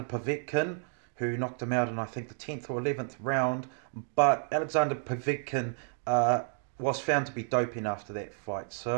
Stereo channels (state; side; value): silent; left; 57 dB below the other